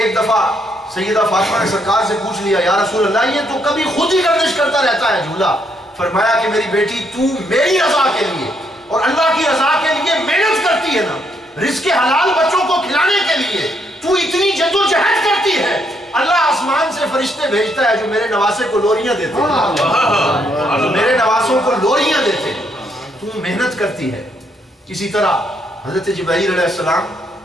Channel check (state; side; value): normal; both; correlation 0.74